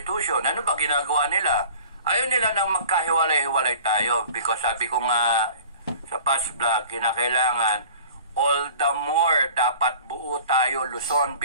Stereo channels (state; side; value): inverted; both; correlation -0.45